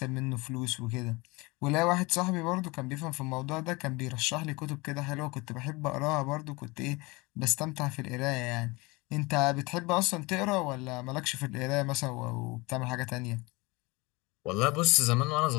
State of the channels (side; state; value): right; quieter; 24.5 dB